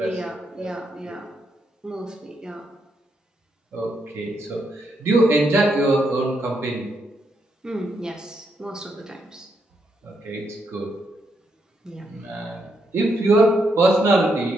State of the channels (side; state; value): both; normal; correlation 0.79